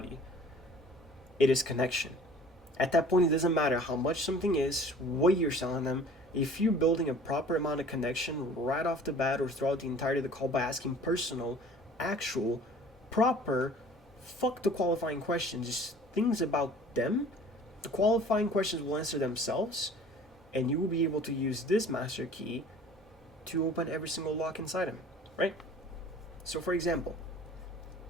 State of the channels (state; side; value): normal; both; correlation 0.48